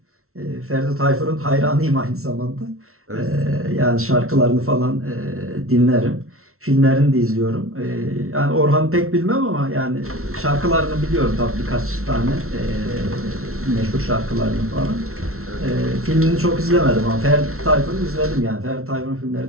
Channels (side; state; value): left; late; 0.63 ms